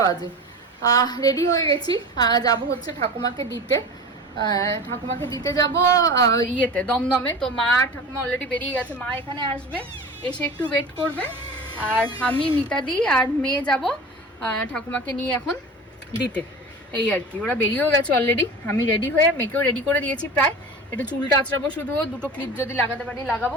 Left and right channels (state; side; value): normal; both; correlation 0.34